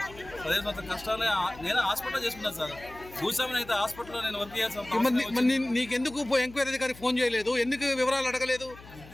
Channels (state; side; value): noise; left; hum, 19 dB below the sound